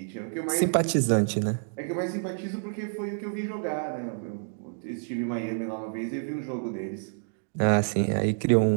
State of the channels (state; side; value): silent; left; digital silence